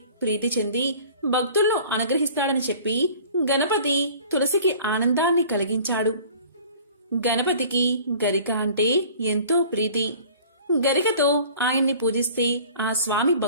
ప్రీతి చెంది భక్తులను అనుగ్రహిస్తాడని చెప్పి గణపతి తులసికి ఆనందాన్ని కలిగించాడు. గణపతికి గరిక అంటే ఎంతో ప్రీతి. గరికతో ఆయన్ని పూజిస్తే ఆ స్వామి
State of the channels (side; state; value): both; inverted; correlation -0.47